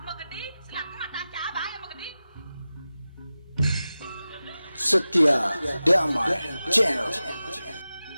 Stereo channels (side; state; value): both; inverted; correlation -0.95